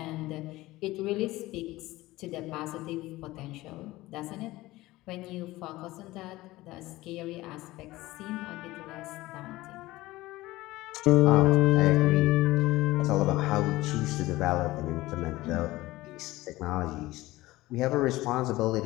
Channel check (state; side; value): quieter; right; 18.4 dB